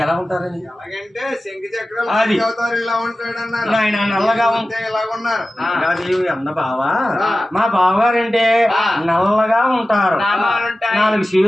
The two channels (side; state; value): both; normal; correlation 0.95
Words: ఎలా ఉంటారని? ఎలాగంటే శంఖ చక్రాలు అవుతారు, ఇలా ఉంటాడు అన్నారు. ఆయన నల్లగా ఉంటే ఇలాగున్నారు. అన్న బావా, మా బావగారంటే నల్లగా ఉంటారు, 4